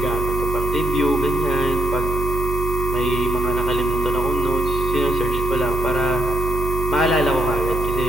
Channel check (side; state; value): right; noise; hum, 4 dB below the sound